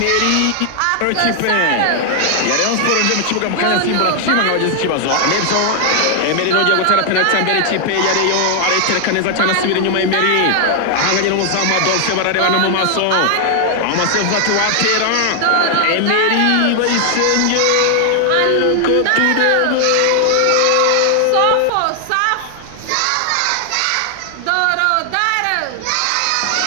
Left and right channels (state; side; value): different; both; correlation 0.00